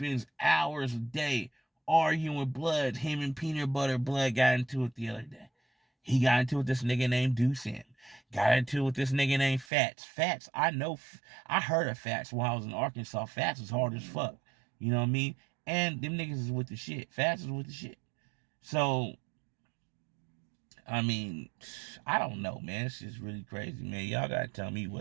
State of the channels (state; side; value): drops out; left; at 9.7 s